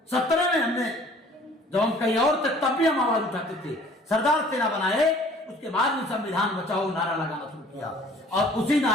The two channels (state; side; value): normal; both; correlation 0.53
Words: 17 में हमने, जब हम कहीं और थे तब भी हम आवाज उठाते थे। सरदार सेना बनाए, उसके बाद में संविधान बचाओ नारा लगाना शुरू किया, और उसी